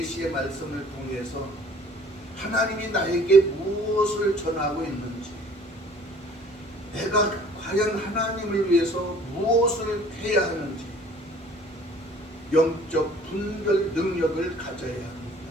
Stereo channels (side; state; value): both; normal; correlation 0.53